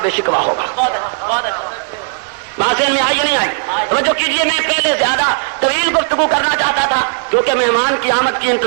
شکوہ ہوگا. بات میں آئی نہیں آئی؟ توجہ کیجیے. میں پہلے زیادہ طویل گفتگو کرنا چاہتا تھا کیونکہ مہمان کی آمد کی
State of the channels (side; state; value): left; silent; 63 dB below the other